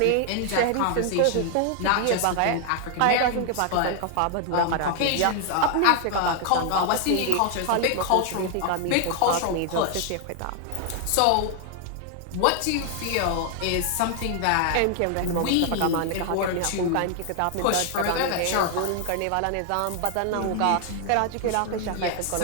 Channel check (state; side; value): different; both; correlation 0.00